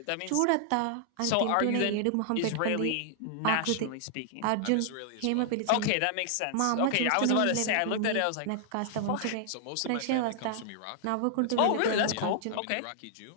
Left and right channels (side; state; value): both; different; correlation -0.01